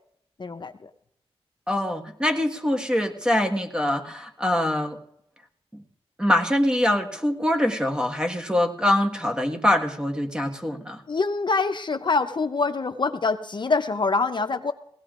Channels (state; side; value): normal; both; correlation 0.76